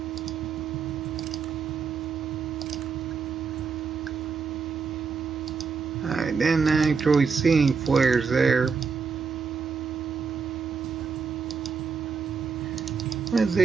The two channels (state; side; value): quieter; left; 5.5 dB